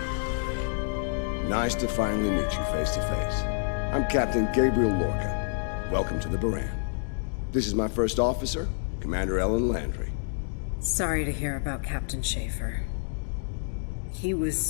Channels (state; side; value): silent; right; digital silence